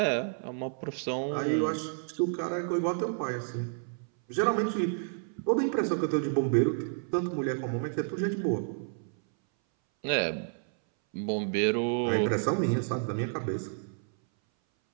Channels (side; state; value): left; silent; 58 dB below the other